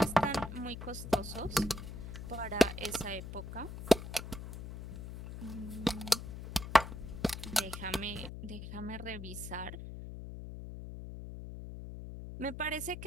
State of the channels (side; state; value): left; noise; hum, 9 dB below the sound